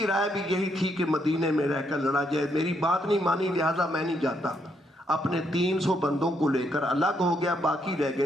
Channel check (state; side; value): normal; both; correlation 0.75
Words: رائے بھی یہی تھی کہ مدینے میں رہ کر لڑا جائے، میری بات نہیں مانی لہذا میں نہیں جاتا۔ اپنے 300 بندوں کو لے کر الگ ہو گیا، باقی رہ